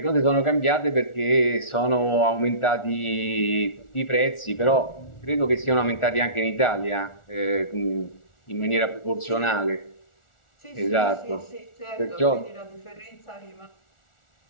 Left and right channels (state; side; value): late; right; 1.4 ms